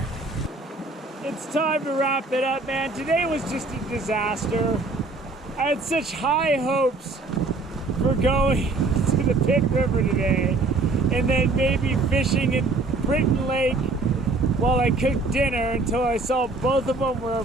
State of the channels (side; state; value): left; quieter; 3.4 dB